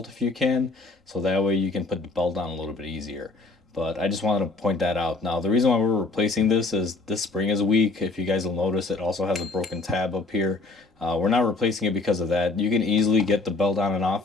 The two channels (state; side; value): quieter; right; 3.5 dB